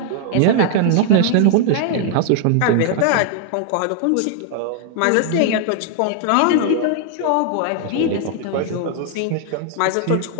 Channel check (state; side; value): different; both; correlation 0.00